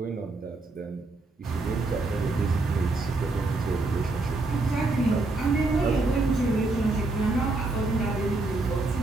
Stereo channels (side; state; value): left; quieter; 3.3 dB